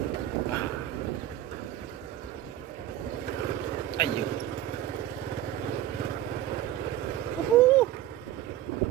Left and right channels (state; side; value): quieter; left; 12.8 dB